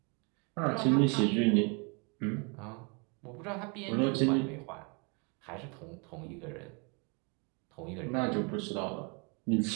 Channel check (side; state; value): left; quieter; 34.2 dB